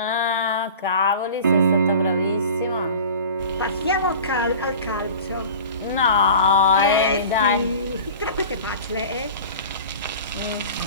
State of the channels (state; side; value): inverted; both; correlation -0.39